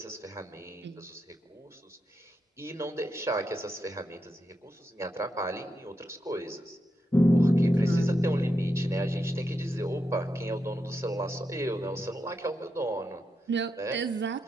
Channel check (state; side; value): normal; both; correlation 0.85